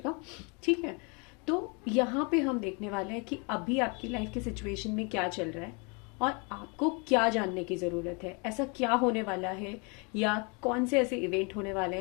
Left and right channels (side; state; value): right; quieter; 32.9 dB